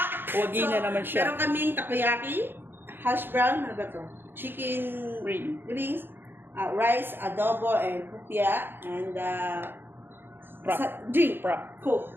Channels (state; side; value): late; left; 0.10 ms